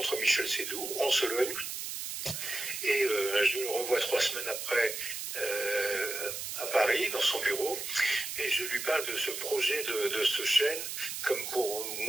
Michel Seydoux en Sologne et je le revois 3 semaines après à Paris, dans son bureau, et je lui parle de ce projet de ce chêne, comme pour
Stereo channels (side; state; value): right; noise; hiss, 5 dB below the sound